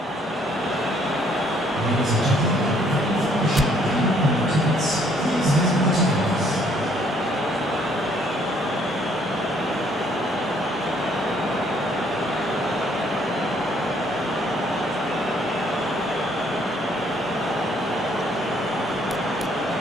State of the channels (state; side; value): normal; both; correlation 0.65